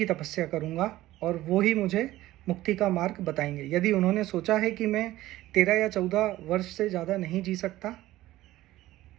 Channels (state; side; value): quieter; left; 16.0 dB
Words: तपस्या करूंगा और वो ही मुझे मुक्ति का मार्ग बताएंगे। यदि उन्होंने सोचा है कि मैं 13 या 14 वर्ष से ज़्यादा नहीं जी सकता